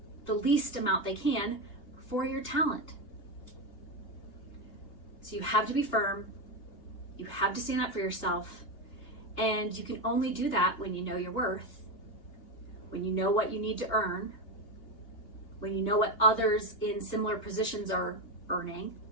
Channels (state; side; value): late; right; 2.8 ms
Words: the least amount they can for your talent. So you have to be firm, you have to stand up for yourself, and you can only do that when you know your worth, when you know what you need to earn, when you know what others in similar positions are earning,